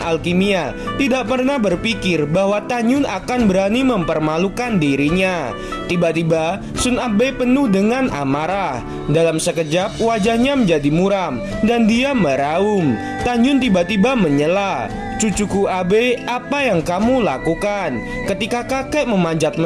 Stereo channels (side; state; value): both; identical; correlation 1.00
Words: tidak pernah berpikir bahwa Tan Yun akan berani mempermalukan dirinya. Tiba-tiba Sun Abe penuh dengan amarah. Dalam sekejap wajahnya menjadi muram dan dia meraung. Tan Yun tiba-tiba menyela, "Cucuku Abe, apa yang kamu lakukan? Ketika kakek memanjat